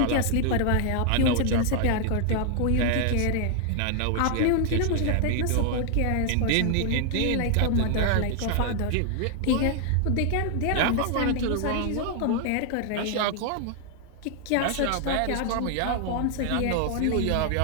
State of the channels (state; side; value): different; both; correlation 0.00